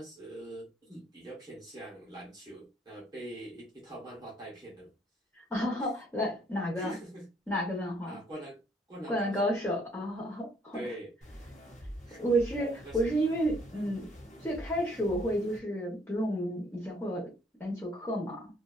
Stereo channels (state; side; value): normal; both; correlation 0.64